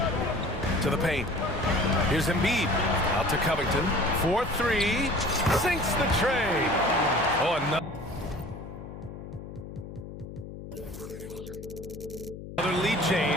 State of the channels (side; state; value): left; noise; hum, 12 dB below the sound